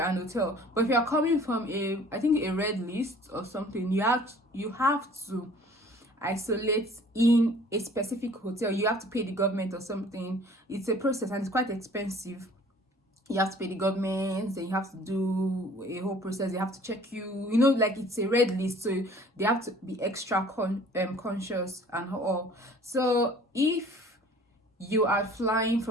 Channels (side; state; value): both; normal; correlation 0.51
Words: hotel. But if you're coming from a red list or something, you have to isolate in a specific hotel. You have to pay the government or something. It's a process and it's quite expensive. You have to pay the government, then you have to do a whole process. They have to check you, like it's a red list, so they have to be extra conscious and all. So if you are flying